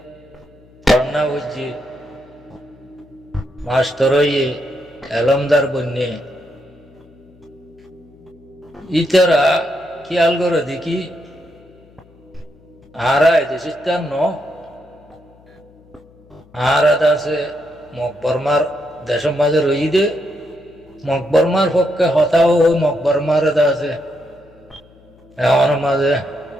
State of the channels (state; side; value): noise; left; hum, 27 dB below the sound